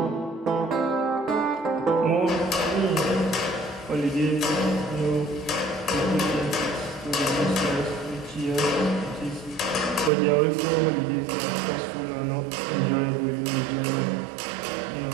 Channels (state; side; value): drops out; left; at 10.1 s